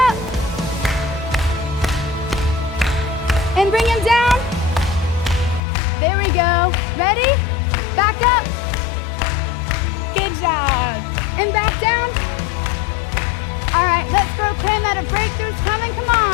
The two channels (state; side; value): drops out; right; at 5.6 s